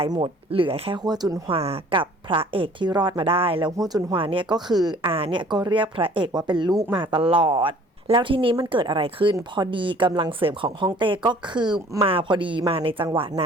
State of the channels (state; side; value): normal; both; correlation 0.52